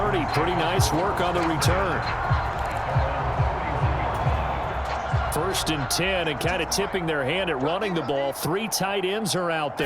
Pretty nice work on the return. 1st and 10, and kind of tipping their hand at running the ball. 3 tight ends are out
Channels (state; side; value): identical; both; correlation 1.00